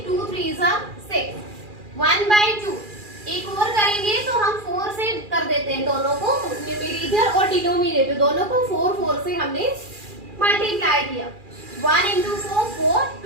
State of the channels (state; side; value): late; left; 2.4 ms